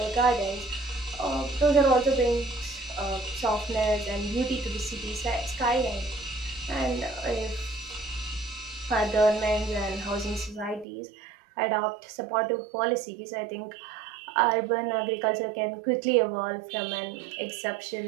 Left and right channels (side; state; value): left; drops out; at 10.9 s